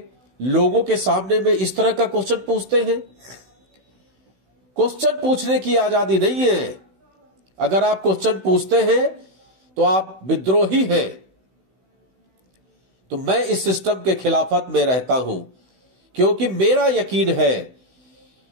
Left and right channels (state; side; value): late; left; 16 ms